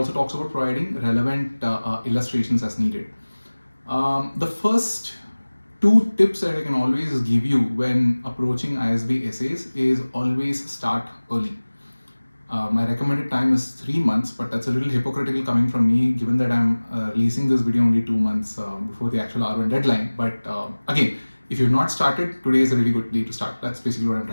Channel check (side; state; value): both; inverted; correlation -1.00